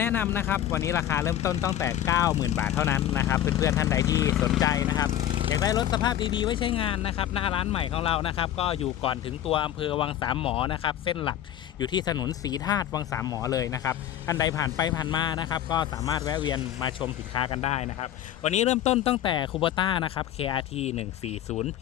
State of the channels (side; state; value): right; quieter; 11.6 dB